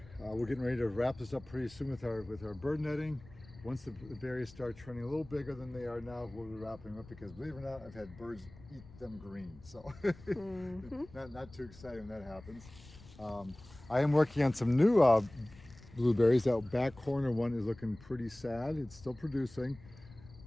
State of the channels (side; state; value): left; noise; rumble, 20 dB below the sound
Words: We're getting ready to wrap this up pretty soon with our bird netting. Once the berries start turning a little bigger than they are now, we'll be wrapping them up because, believe it or not, I've had birds eat them green. So not too exciting when that happens. I am working on some new blueberries. That back corner one is looking pretty sad. It's still producing.